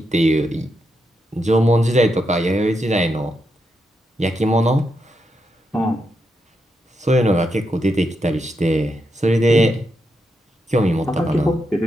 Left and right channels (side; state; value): both; normal; correlation 0.83